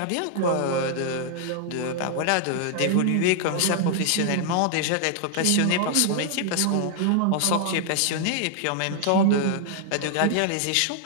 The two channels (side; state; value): both; different; correlation 0.00